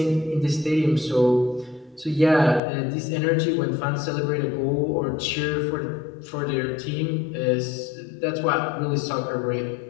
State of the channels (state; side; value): drops out; right; at 2.6 s